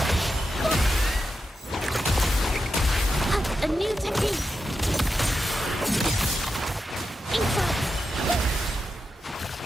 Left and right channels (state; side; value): normal; both; correlation 0.88